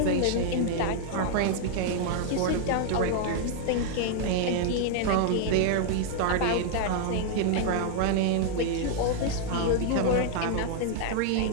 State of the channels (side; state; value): both; different; correlation 0.00